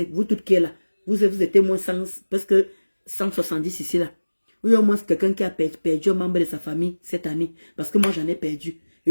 vous toutes qui êtes là, vous êtes moins 100, parce que 170 ici là. Il y a au moins quelqu'un qui a perdu un membre de sa famille cette année. Parce que moi j'en ai perdu.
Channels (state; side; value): inverted; both; correlation -1.00